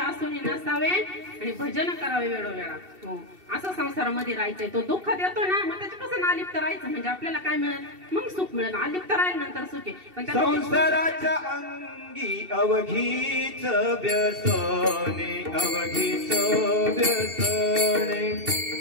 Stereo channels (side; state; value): left; late; 2.7 ms